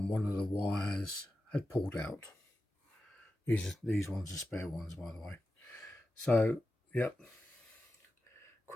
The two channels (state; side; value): normal; both; correlation 0.92